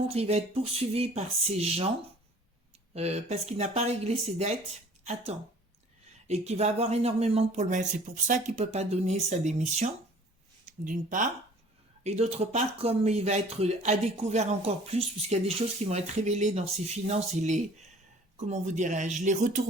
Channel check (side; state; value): both; normal; correlation 0.51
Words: il va être poursuivi par ces gens parce qu'il n'a pas réglé ses dettes à temps. Et qu'il va avoir énormément de problèmes. C'est pour ça qu'il ne peut pas donner sa démission, d'une part. Et d'autre part, comme il va être à découvert encore plus, puisqu'il y a des choses qui vont être révélées dans ses finances et les, comment vous dirais-je, les